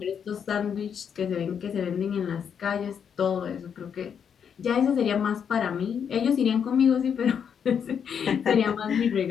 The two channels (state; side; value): quieter; right; 7.5 dB